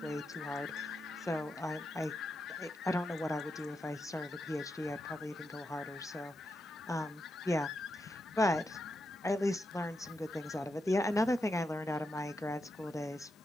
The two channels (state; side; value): normal; both; correlation 0.85